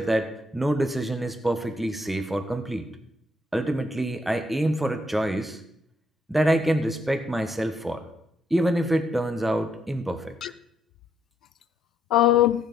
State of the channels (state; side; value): normal; both; correlation 0.74